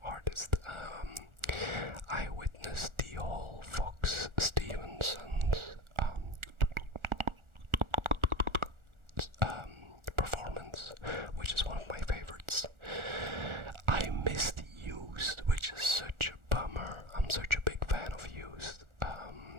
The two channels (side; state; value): left; late; 1.4 ms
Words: artists. I witnessed the whole Fox Stevenson's performance, which is one of my favorites. I missed Used, which is such a bummer. I'm such a big fan of Used,